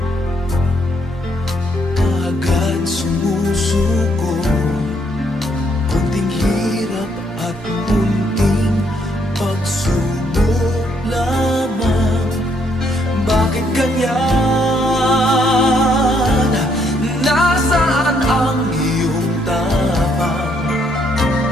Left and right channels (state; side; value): normal; both; correlation 0.71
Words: kaagad sumusuko. Kunting hirap at munting pagsubok lamang. Bakit ganyan? Nasaan ang iyong tapang?